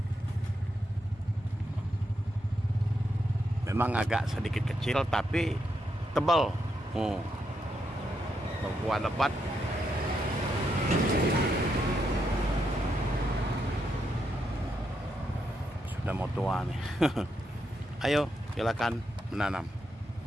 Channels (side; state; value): both; normal; correlation 0.81